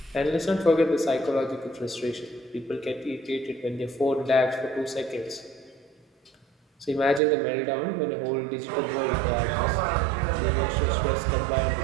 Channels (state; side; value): drops out; left; at 7.2 s